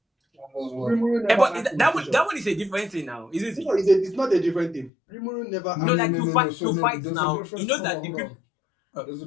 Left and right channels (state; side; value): drops out; right; at 4.9 s